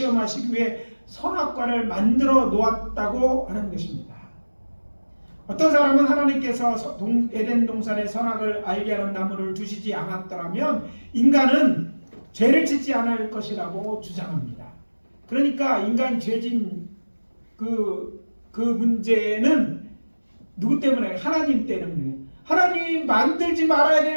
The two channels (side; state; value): both; inverted; correlation -1.00